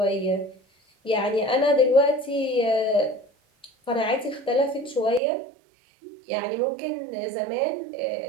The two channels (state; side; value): drops out; left; at 5.2 s